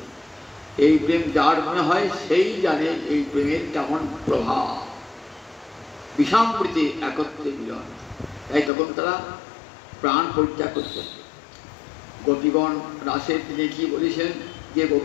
এই প্রেম যার মনে হয় সেই জানে এই প্রেমের কেমন প্রভাব। বিষামৃতে একত্রে মিলন। তাই তখন তারা প্রাণ পরিত্যাগ করছে। গোপীগণ রাসের তিনি কি বলেছেন যে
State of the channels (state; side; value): drops out; right; at 8.7 s